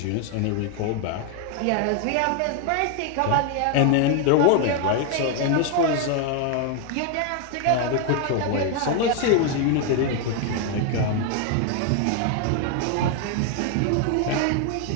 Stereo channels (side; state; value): both; different; correlation 0.00